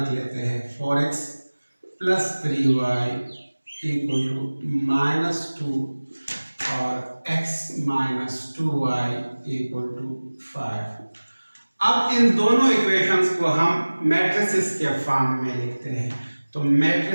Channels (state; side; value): inverted; both; correlation -1.00